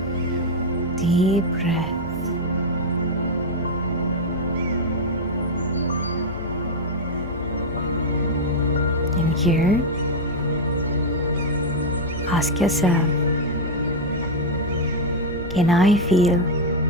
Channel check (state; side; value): normal; both; correlation 0.00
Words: Deep breath. And here, ask yourself, can I feel